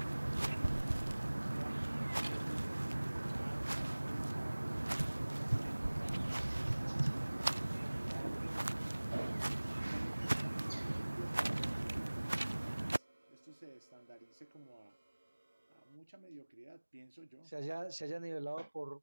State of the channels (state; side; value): inverted; both; correlation -1.00